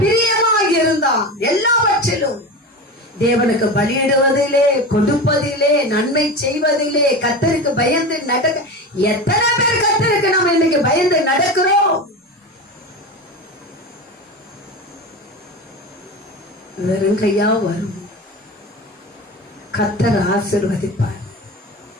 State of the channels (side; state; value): both; normal; correlation 0.26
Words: பிரியமாக இருந்தான். எல்லாவற்றிலும் தேவனுக்கு பலியிடுவதிலே, கொடுப்பதிலே, நன்மை செய்வதிலே கர்த்தருக்கு பயந்து நடக்க. எத்தனை பேர் கர்த்தருக்கு நம்ம இன்னைக்கு பயந்து நடக்கிறோம்? வெறும் கையா வரும். கர்த்தர் ஆசீர்வதிப்பார்.